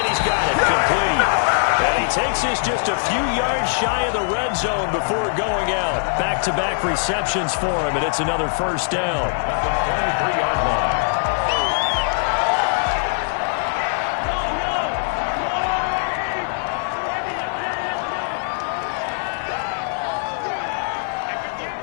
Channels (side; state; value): right; silent; 65 dB below the other